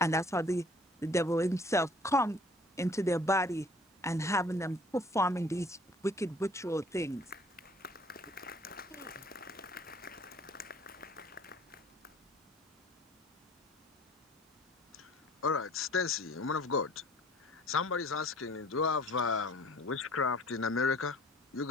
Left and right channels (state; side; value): normal; both; correlation 0.53